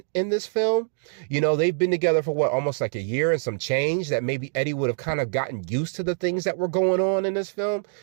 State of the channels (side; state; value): left; silent; digital silence